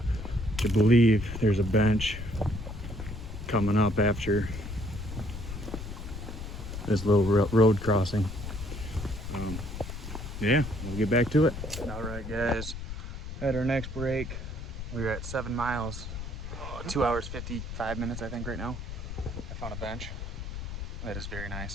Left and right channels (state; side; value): noise; left; rumble, 8 dB below the sound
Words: I believe there's a bench coming up after this little road crossing. Yeah, we'll get back to it. All right, guys. At our next break, we're at 7 miles, 2 hours 55 minutes, I think, right now. I found a bench. That is very